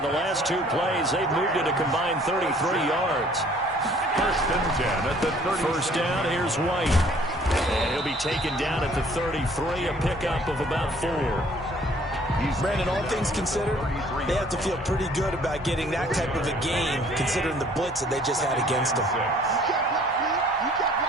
the last 2 plays. They've moved it a combined 33 yards. 1st and 10 at the 30. 1st down, here's White. And he'll be taken down at the 33, a pickup of about 4. Brandon, all things considered, they have to feel pretty good about getting that type of a gain, considering the blitz that they just had against them.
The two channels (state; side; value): normal; both; correlation 0.57